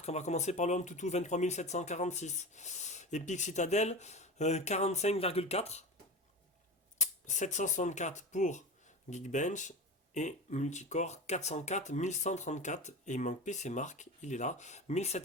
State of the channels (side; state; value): both; normal; correlation 0.28